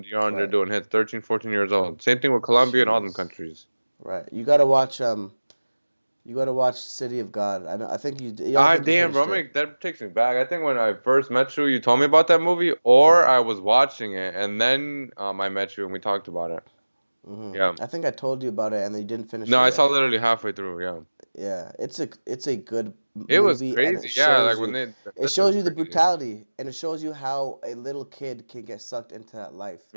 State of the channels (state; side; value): inverted; both; correlation -1.00